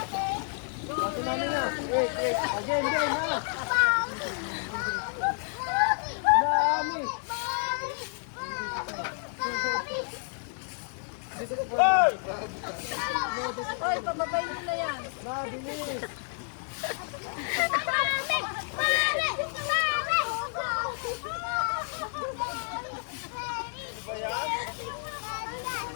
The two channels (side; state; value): right; silent; 58 dB below the other